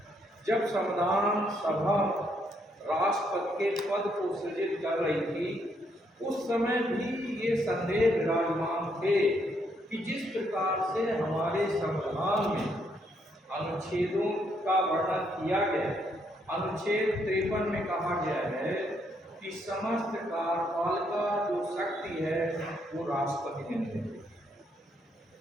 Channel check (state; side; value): normal; both; correlation 0.74